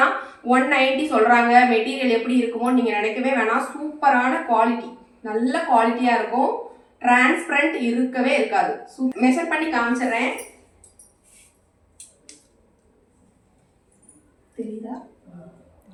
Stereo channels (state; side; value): identical; both; correlation 1.00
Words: 190 சொல்றாங்க, மெட்டீரியல் எப்படி இருக்குமோ நீங்க நினைக்கவே வேணாம். சூப்பரான குவாலிட்டி, நல்ல குவாலிட்டியா இருக்கும். டிரான்ஸ்பரண்ட் இருக்கவே இருக்காது. மெஷர் பண்ணி காமிச்சிடுறேன். தெரியுதா?